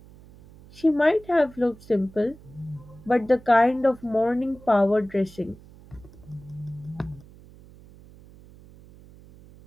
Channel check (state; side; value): noise; right; hum, 22 dB below the sound